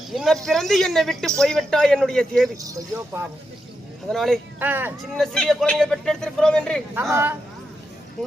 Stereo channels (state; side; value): normal; both; correlation 0.85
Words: இன்ன பிறந்து என்னை விட்டு போய்விட்டா என்னுடைய தேவி. ஐயோ பாவம். அதனாலே சின்ன சிறிய குழந்தையை பெற்றெடுத்திருக்கிறோம் என்று ஆமா